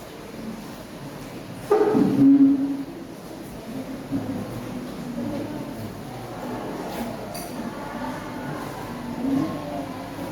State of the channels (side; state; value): both; identical; correlation 1.00